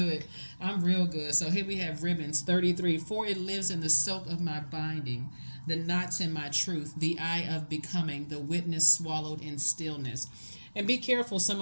I'm real good. So here we have ribbons 33. For it lives in the silk of my binding, the knots in my truth, the eye of becoming, the witness swallowed in stillness. And be careful, some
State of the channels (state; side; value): inverted; both; correlation -1.00